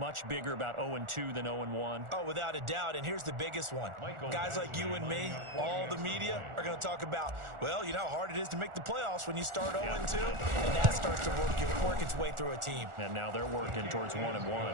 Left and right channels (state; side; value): late; left; 1.4 ms